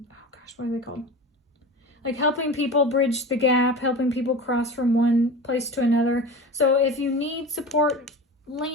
gosh, what are they called? Like helping people bridge the gap, helping people cross from one place to another. So if you need support,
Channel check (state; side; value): normal; both; correlation 0.32